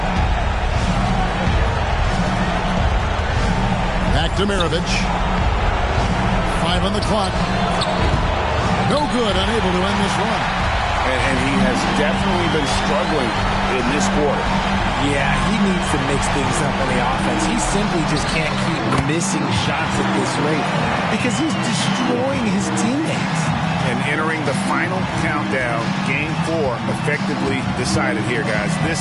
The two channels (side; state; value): both; identical; correlation 1.00